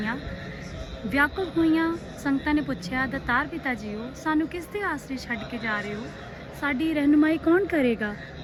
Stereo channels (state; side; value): identical; both; correlation 1.00